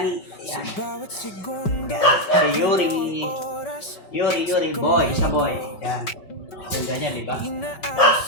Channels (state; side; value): late; right; 5.3 ms